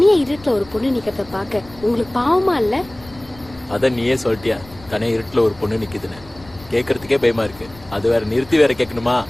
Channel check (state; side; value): noise; left; rumble, 22 dB below the sound